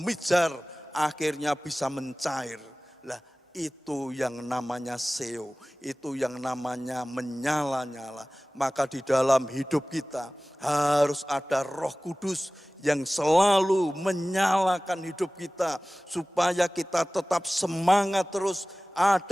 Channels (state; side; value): normal; both; correlation 0.98